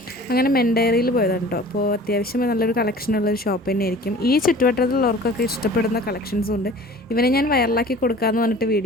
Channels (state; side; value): normal; both; correlation 0.45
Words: അങ്ങനെ മെൻഡയറിയിൽ പോയതാണ് കേട്ടോ. അപ്പോൾ അത്യാവശ്യം നല്ലൊരു കളക്ഷനുള്ളൊരു ഷോപ്പ് തന്നെയായിരിക്കും. ഈ ചുറ്റുവട്ടത്തിലുള്ളവർക്കൊക്കെ ഇഷ്ടപ്പെടുന്ന കളക്ഷൻസും ഉണ്ട്. ഇവനെ ഞാൻ വൈറലാക്കി കൊടുക്കാമെന്ന് പറഞ്ഞിട്ട്